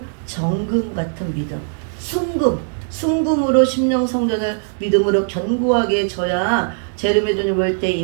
정금 같은 믿음. 순금으로 심령 성전을 믿음으로 견고하게 져야 재림의 주님 올 때 이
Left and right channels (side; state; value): left; silent; digital silence